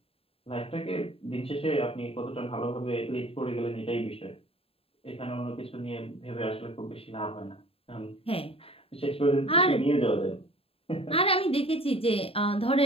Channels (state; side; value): late; right; 0.27 ms